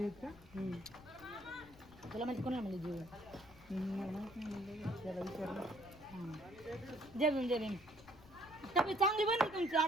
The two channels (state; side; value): noise; left; rumble, 21 dB below the sound